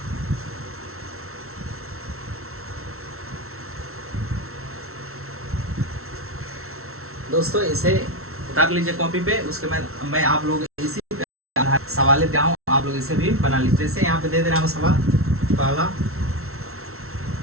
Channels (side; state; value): left; late; 0.63 ms